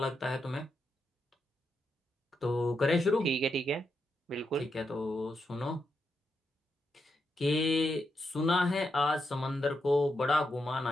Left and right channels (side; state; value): both; normal; correlation 0.83